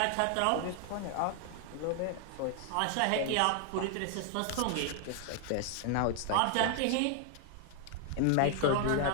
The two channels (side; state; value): both; different; correlation 0.00